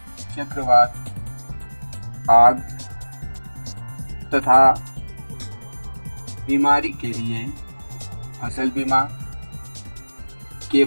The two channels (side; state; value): both; inverted; correlation -1.00